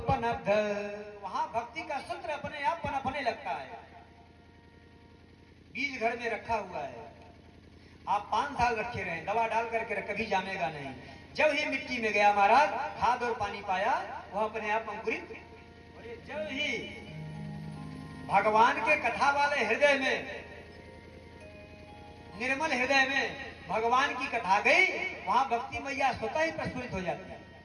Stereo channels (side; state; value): both; identical; correlation 1.00